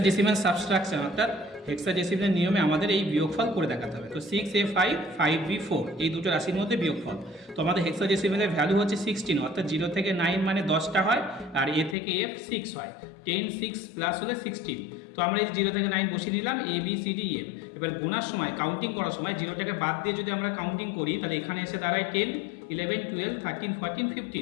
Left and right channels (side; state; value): right; drops out; at 12.0 s